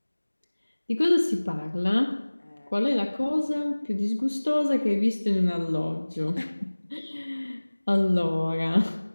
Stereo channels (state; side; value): inverted; both; correlation -1.00